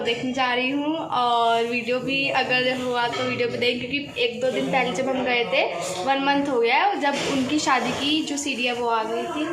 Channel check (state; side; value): identical; both; correlation 1.00